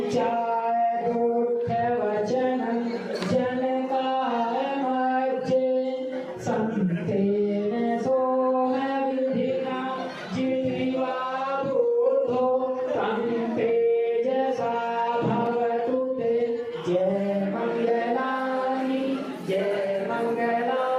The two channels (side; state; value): both; identical; correlation 1.00